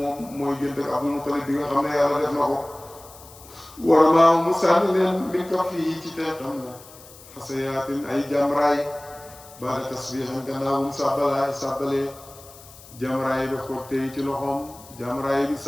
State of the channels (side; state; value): left; noise; hiss, 21 dB below the sound